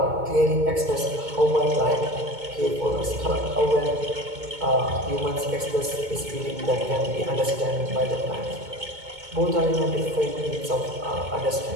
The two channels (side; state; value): left; late; 2.2 ms